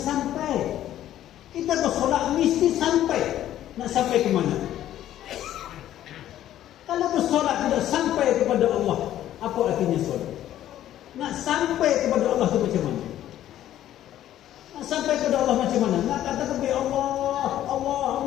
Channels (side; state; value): right; quieter; 12.4 dB